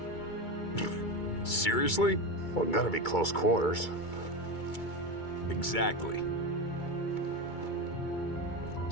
Seriously? Well, gotta be close quarters. Exactly.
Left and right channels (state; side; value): late; right; 2.3 ms